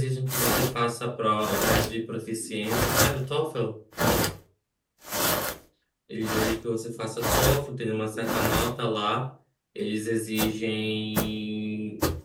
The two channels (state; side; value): identical; both; correlation 1.00